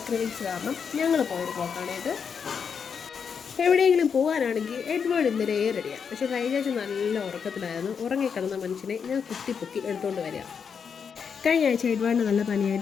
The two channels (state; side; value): quieter; right; 6.6 dB